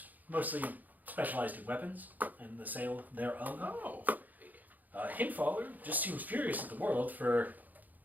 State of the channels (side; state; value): left; late; 0.082 ms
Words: mostly specialized in weapons and the sale thereof. Oh. Hinfaller just seems furious at the world for